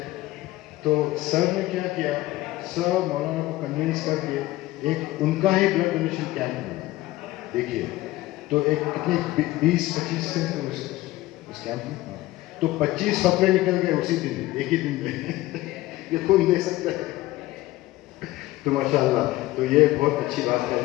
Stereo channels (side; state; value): right; quieter; 17.4 dB